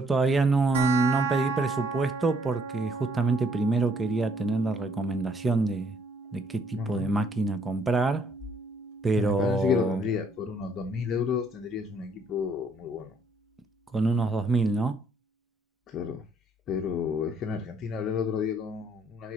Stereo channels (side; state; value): both; normal; correlation 0.66